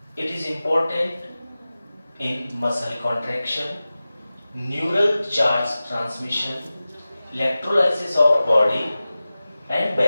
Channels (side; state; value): both; inverted; correlation -0.96